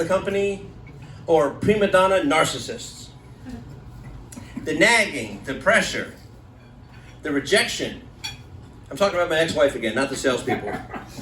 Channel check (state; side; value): identical; both; correlation 1.00